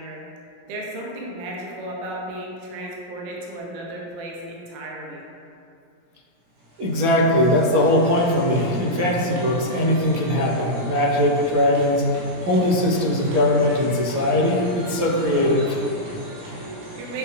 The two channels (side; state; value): left; late; 17 ms